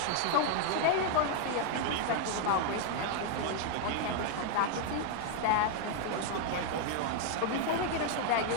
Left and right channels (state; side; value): different; both; correlation 0.00